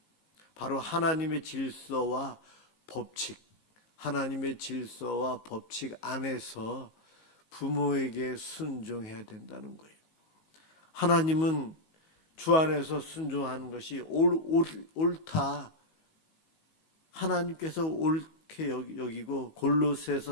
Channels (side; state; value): right; late; 19 ms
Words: 바로 하나님의 질서와 법칙, 하나님의 질서와 법칙 안에서 부모에게 순종해야 된다는 거예요. 하나님은 주 안에서 순종하는 것이 옳다. 하나님께서 옳게 여기고,